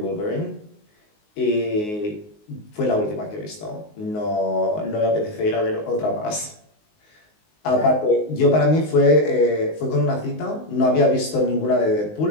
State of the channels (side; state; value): right; late; 19 ms